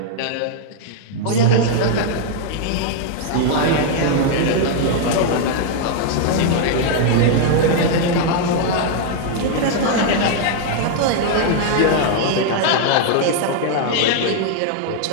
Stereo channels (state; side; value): different; both; correlation -0.01